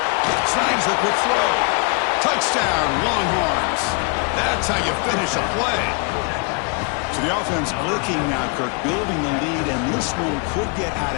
Snags the quick throw. Touchdown, Longhorns. That's how you finish a play. So the offense clicking now, Kirk, building the lead, and this one could get out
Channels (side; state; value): right; quieter; 34.0 dB